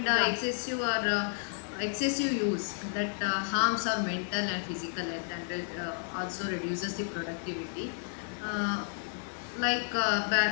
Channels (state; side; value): silent; right; digital silence